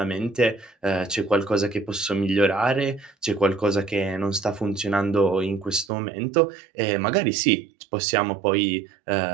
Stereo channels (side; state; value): left; drops out; at 5.9 s